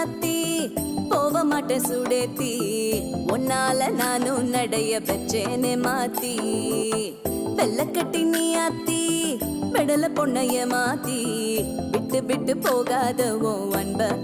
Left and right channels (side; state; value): both; identical; correlation 1.00